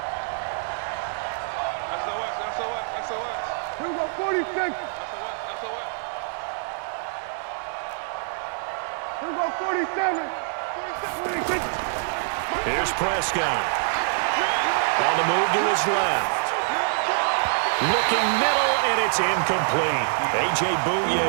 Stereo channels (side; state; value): left; silent; 62 dB below the other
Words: Here we go, 46. Here we go, 47. 46. Here's Prescott. On the move to his left. Looking middle, and it's incomplete. A.J.